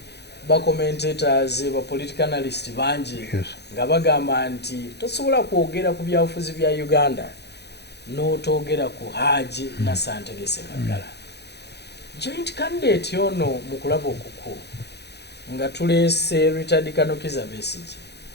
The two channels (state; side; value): late; right; 0.49 ms